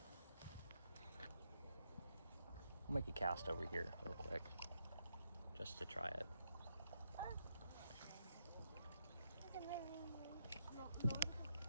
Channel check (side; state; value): both; inverted; correlation -0.81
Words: I'll make a cast over here real quick, just to try it.